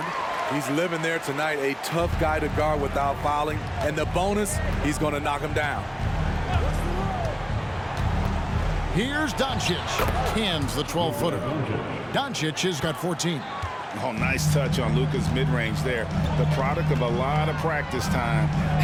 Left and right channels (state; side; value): identical; both; correlation 1.00